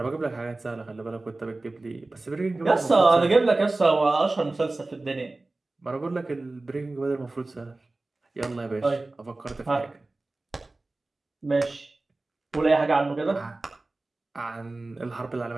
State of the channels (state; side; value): quieter; left; 3.1 dB